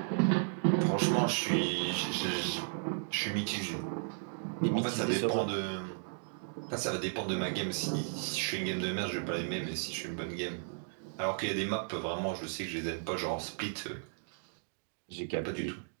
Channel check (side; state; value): left; silent; digital silence